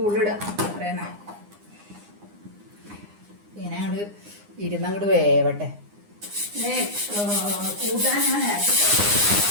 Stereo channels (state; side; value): late; left; 9.7 ms